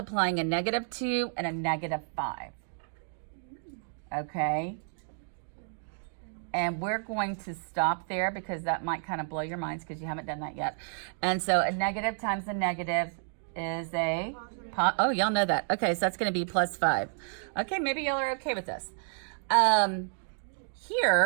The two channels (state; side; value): silent; left; 57 dB below the other